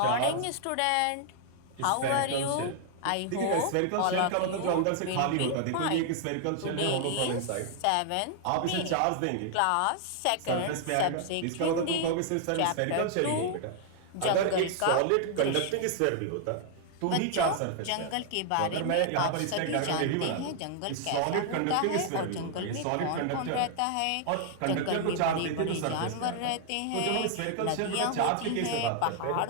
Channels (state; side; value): different; both; correlation 0.00